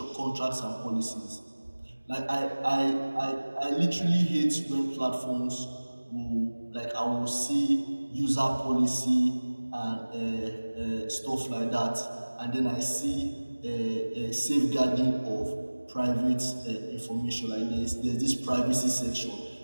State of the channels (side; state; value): both; inverted; correlation -1.00